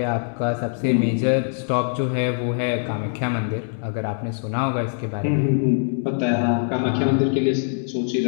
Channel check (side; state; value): right; silent; digital silence